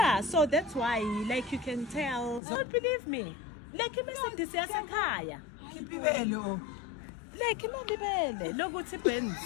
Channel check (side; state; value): right; drops out; at 2.4 s